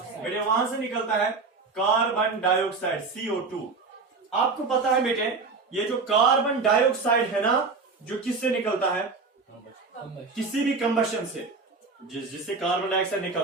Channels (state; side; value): quieter; left; 4.3 dB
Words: वहां से निकलता है कार्बन डाइऑक्साइड, CO2। आपको पता है बेटे, ये जो कार्बन डाइऑक्साइड है ना, जो किससे निकलता है, किसी भी कंबशन से, जिससे कार्बन डाइऑक्साइड